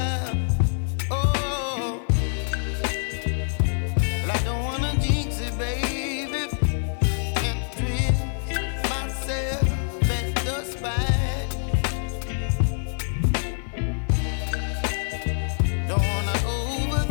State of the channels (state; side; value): silent; right; 56 dB below the other